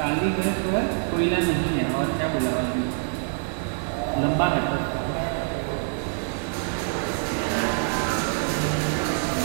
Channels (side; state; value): left; silent; 61 dB below the other